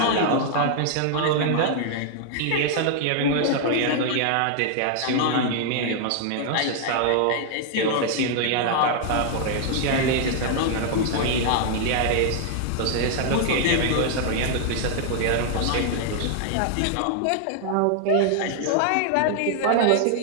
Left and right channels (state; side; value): different; both; correlation -0.01